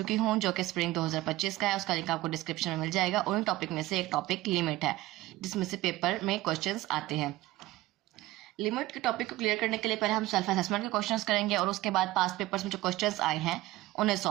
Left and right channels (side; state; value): left; quieter; 17.5 dB